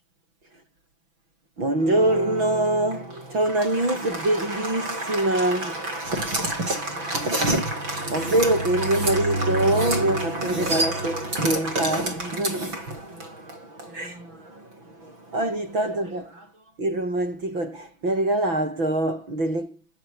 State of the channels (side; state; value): left; late; 6.0 ms